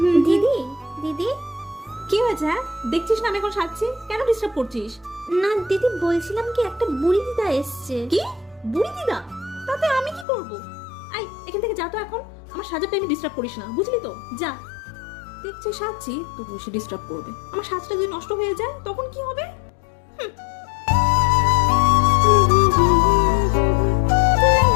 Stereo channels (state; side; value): drops out; right; at 10.2 s